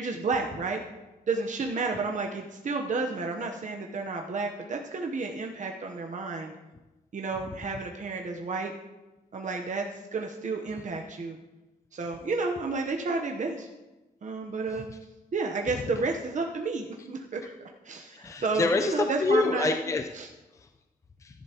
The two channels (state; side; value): normal; both; correlation 0.52